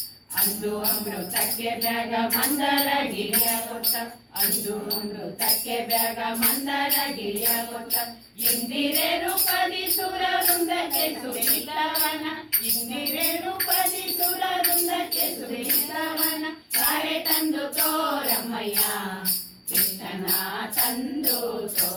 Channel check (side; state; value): both; identical; correlation 1.00